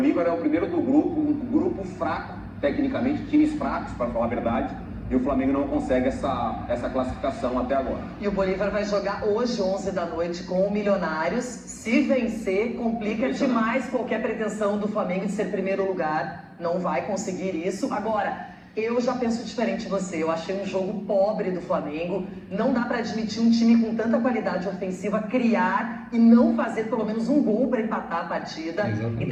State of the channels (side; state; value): both; identical; correlation 1.00